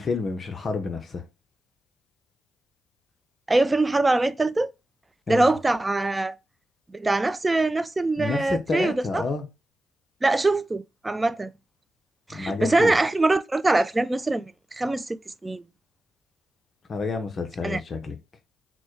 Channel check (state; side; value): normal; both; correlation 0.94